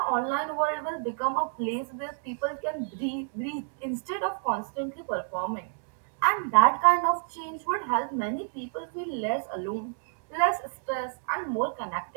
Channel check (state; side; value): silent; left; digital silence